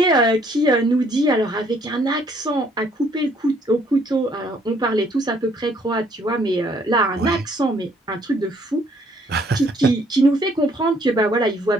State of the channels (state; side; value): normal; both; correlation 0.64